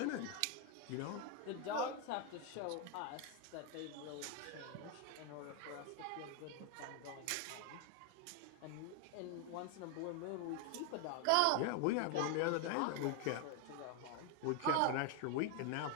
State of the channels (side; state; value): both; different; correlation 0.01